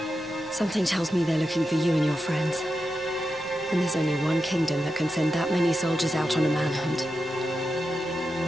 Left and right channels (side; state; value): both; normal; correlation 0.89